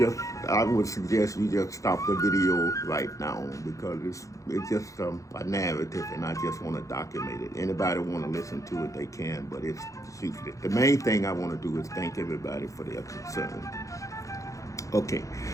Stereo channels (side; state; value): right; late; 0.16 ms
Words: would suggest you just stop the video right now because it's just a narrative, and I just want to document it. Anybody want to listen to it, they can, but it's useless. The main thing I want to do is thank everybody for their concern. Okay,